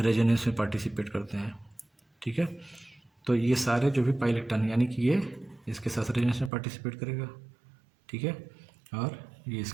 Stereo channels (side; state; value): left; drops out; at 6.5 s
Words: में पार्टिसिपेट करते हैं। ठीक है, तो ये सारे जो भी पाई इलेक्ट्रॉन यानी कि ये इसके साथ रेजोनेंस में पार्टिसिपेट करेगा। ठीक है, और ये